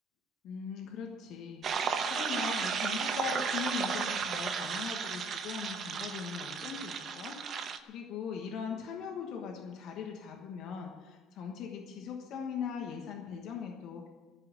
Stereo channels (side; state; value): both; normal; correlation 0.57